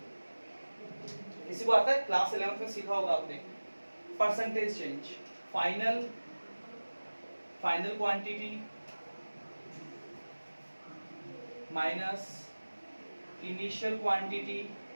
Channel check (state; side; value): inverted; both; correlation -1.00